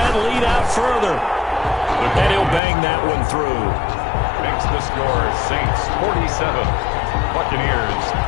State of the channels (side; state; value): right; drops out; at 2.6 s